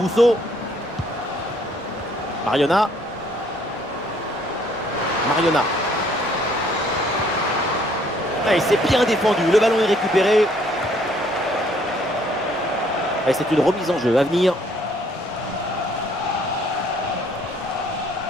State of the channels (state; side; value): normal; both; correlation 0.63